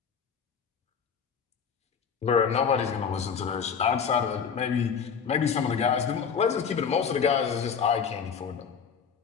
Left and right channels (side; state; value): right; quieter; 6.7 dB